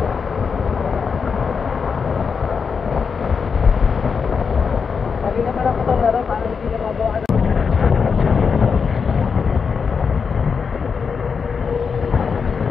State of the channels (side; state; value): right; quieter; 5.8 dB